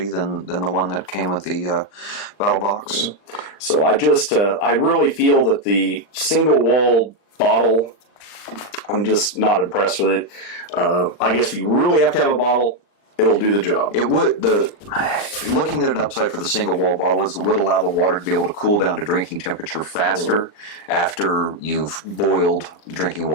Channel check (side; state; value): right; late; 39 ms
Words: than the one that came with the Battlbox. So I really feel that the single walled bottle, I'm just not impressed with it. I guess if you really have to have a bottle, it'll do the job. It would. Looking at an upside for the single wall bottle is it would allow the water to be able to cool down to drinking temperature faster after you've boiled drinking